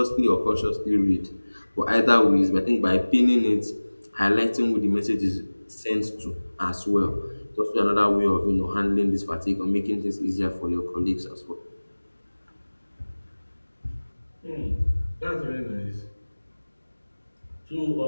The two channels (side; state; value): both; inverted; correlation -1.00